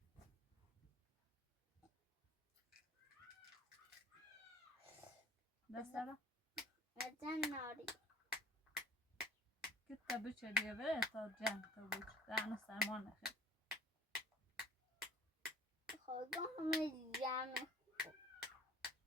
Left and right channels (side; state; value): both; normal; correlation 0.49